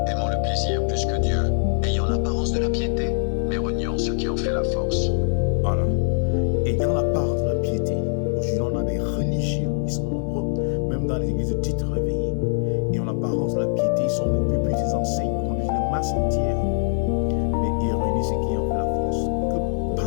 aimant le plaisir plus que Dieu, ayant l'apparence de la piété, mais reniant ce qui en fait la force. Voilà. Ayant l'apparence de la piété, aujourd'hui on a des religieux, ils sont nombreux, même dans les églises dites réveillées, et en l'apparence de la piété, ils sont beaucoup plus des enseignes, conduisent les masses entières, mais ils réunissent ce qui en fait la force. Que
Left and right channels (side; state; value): right; silent; 63 dB below the other